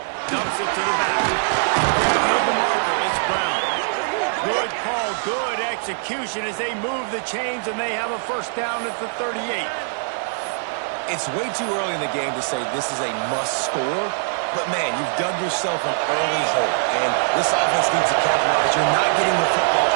Dumps it to the back. Grabbing the marker. It's Brown. Good call. Good execution as they move the chains and they have a first down at the 38. It's way too early in the game to say this is a must score. But, man, you've dug yourself an early hole, and this offense needs to capitalize. You're not getting the football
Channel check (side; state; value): left; silent; digital silence